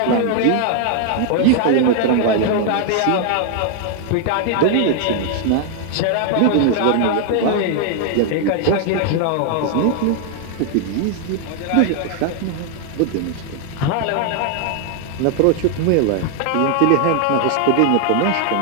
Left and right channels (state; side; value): different; both; correlation 0.00